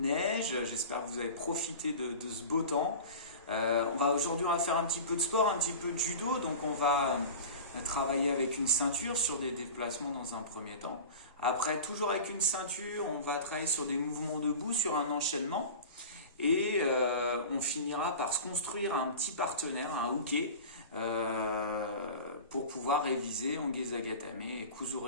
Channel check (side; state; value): both; inverted; correlation -0.34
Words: neige, j'espère que vous avez profité de ce beau temps. Aujourd'hui on va faire un petit peu de sport, un petit peu de judo, donc on va travailler avec une ceinture sur des déplacements dans un premier temps. Après, toujours avec une ceinture, on va travailler sur des mouvements debout, sur un enchaînement. Et on finira par se construire un petit partenaire, un hooké, pour pouvoir réviser Onge Zagatame et